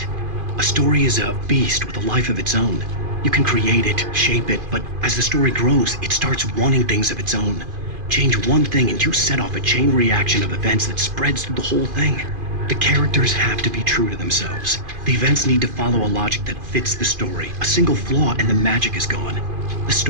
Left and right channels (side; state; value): left; late; 2.5 ms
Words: A story is a beast with a life of its own. You can create it, shape it, but as the story grows, it starts wanting things of its own. Change one thing and you set off a chain reaction of events that spreads through the whole thing. The characters have to be true to themselves. The events need to follow a logic that fits the story. A single flaw and the magic is gone. The